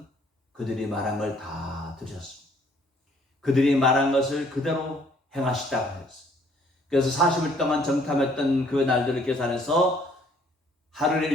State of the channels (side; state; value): both; normal; correlation 0.62